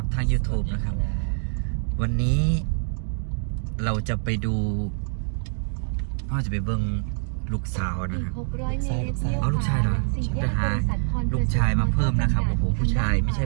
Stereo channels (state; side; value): silent; left; digital silence